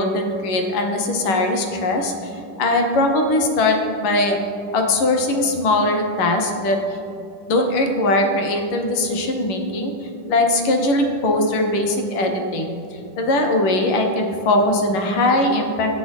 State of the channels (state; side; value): late; right; 11 ms